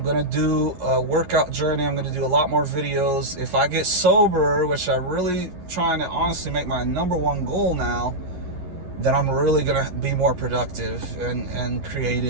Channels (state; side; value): late; left; 11 ms